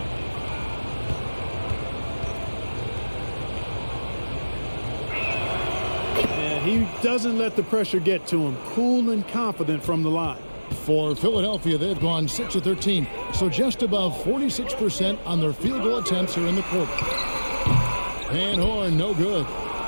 He doesn't let the pressure get to him. Cool and confident from the line. For Philadelphia, they've gone 6 of 13, so just above 46% on their field goal attempts here in the quarter. Van Horn, no good.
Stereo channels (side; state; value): both; inverted; correlation -1.00